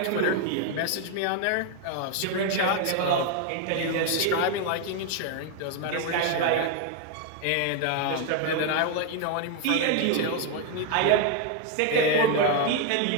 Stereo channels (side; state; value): both; different; correlation 0.01